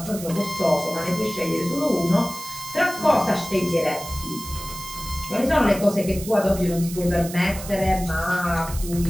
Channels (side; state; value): right; noise; hiss, 12 dB below the sound